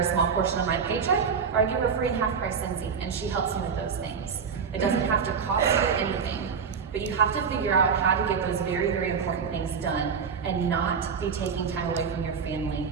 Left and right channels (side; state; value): left; quieter; 6.2 dB